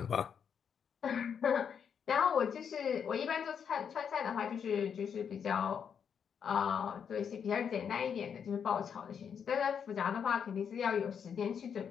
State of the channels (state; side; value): quieter; right; 7.4 dB